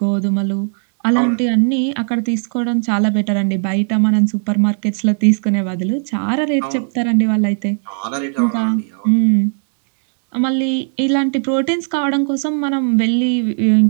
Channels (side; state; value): left; silent; 61 dB below the other